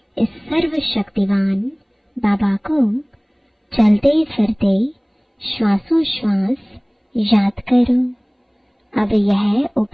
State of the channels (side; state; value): both; identical; correlation 1.00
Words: इस सर्वशक्तिवान बाबा को चलते फिरते श्वासोश्वास याद करो। अब यह